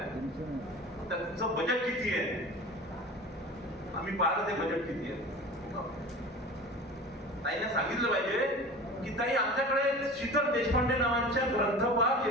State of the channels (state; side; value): normal; both; correlation 0.36